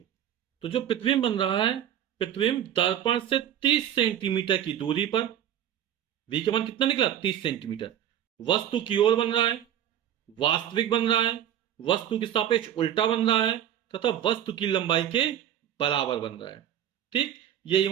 तो जो प्रतिबिंब बन रहा है, प्रतिबिंब दर्पण से 30 सेंटीमीटर की दूरी पर, v का मान कितना निकला? 30 सेंटीमीटर, वस्तु की ओर बन रहा है। वास्तविक बन रहा है, वस्तु के सापेक्ष उल्टा बन रहा है तथा वस्तु की लंबाई के बराबर बन रहा है। ठीक, यही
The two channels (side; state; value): left; quieter; 10.6 dB